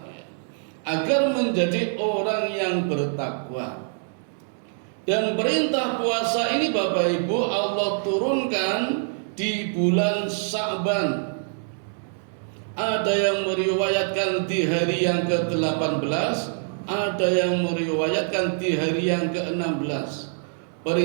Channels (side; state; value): left; silent; 62 dB below the other